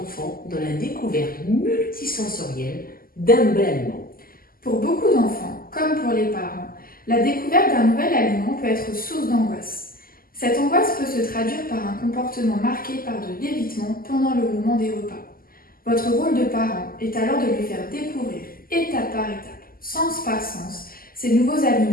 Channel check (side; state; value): right; late; 0.42 ms